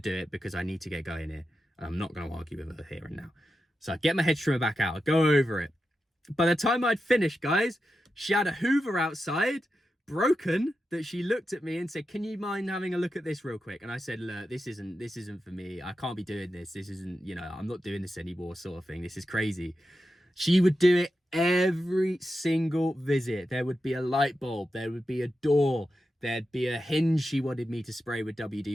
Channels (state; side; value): normal; both; correlation 0.90